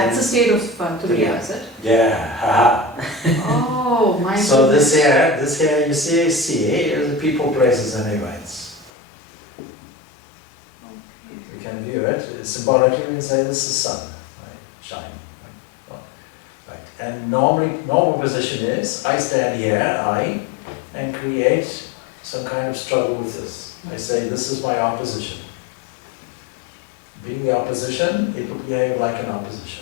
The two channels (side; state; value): right; drops out; at 8.9 s